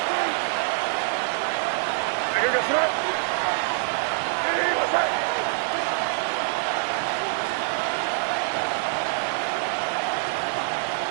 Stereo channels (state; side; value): silent; left; digital silence